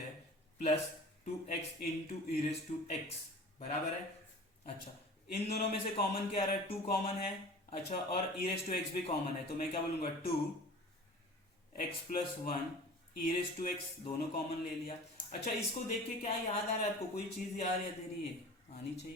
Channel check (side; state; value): both; normal; correlation 0.41